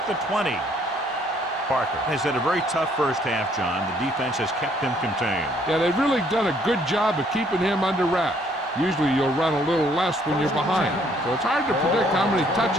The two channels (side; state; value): both; normal; correlation 0.65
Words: the 20. Parker has had a very tough first half, John. The defense has kept him contained. Yeah, they've really done a good job of keeping him under wraps. Usually you'll run a little less when you're behind. So it's hard to predict how many